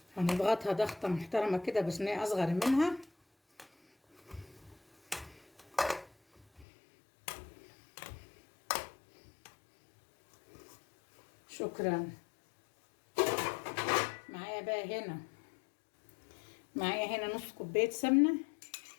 هنضغطها ضغطه محترمه كده بصينيه اصغر منها. شكرا. معايا هنا نص كوبايه سمنه.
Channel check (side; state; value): right; drops out; at 6.7 s